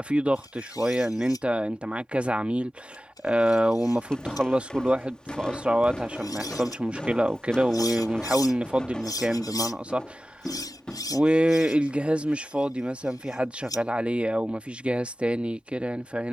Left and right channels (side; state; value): both; normal; correlation 0.95